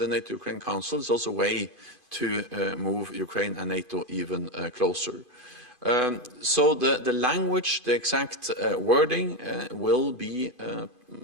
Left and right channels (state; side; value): late; right; 2.5 ms